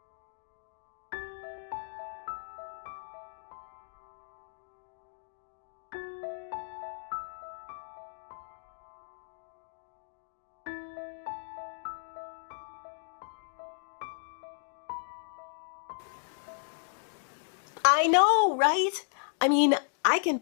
I know, right? I mean, I can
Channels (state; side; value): silent; right; digital silence